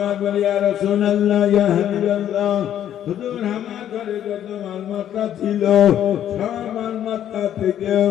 বলে, ইয়া রাসূলুল্লাহ, ইয়া হাবিবাল্লাহ, হুজুর আমার ঘরে যত মালমাত্রা ছিল সব মালমাত্রা থেকে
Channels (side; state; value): right; quieter; 10.7 dB